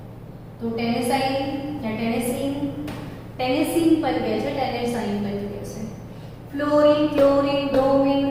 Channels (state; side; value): identical; both; correlation 1.00